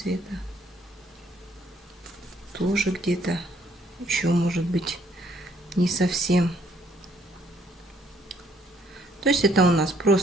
Тоже где-то еще может быть не совсем. То есть это у нас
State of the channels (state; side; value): normal; both; correlation 0.66